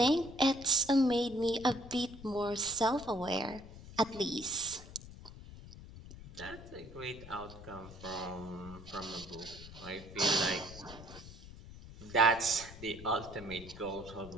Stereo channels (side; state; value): left; noise; rumble, 15 dB below the sound